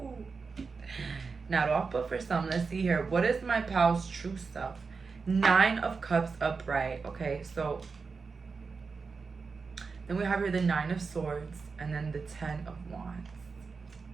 Now off, but for some, let's see here. What is my pal's true self? Nine of Cups upright. Okay, so then we have here the Nine of Swords and then the Ten of Wands.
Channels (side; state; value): left; quieter; 4.8 dB